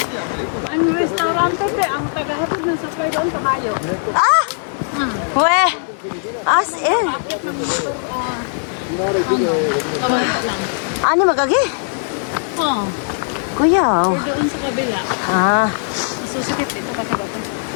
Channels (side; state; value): right; silent; digital silence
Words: Ang restaurante, te, ang tagahatid ng supply doon, kamayo. Ah! Weh! As in. Kamayo lang. Ano magagi? Oo. Kuya. Doon sa kabila. Ah. Susukit ito kasi bato.